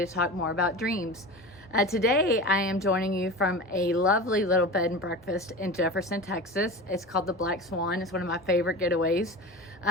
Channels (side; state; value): both; normal; correlation 0.31